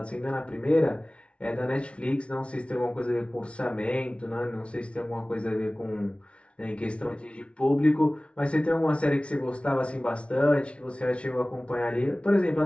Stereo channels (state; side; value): late; right; 0.060 ms